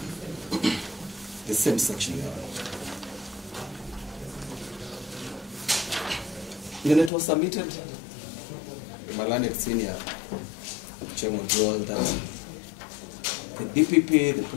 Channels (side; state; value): right; drops out; at 7.1 s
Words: the same section, Your Honor. Your Honor, it was submitted my learned senior chairman rule that the DPP, the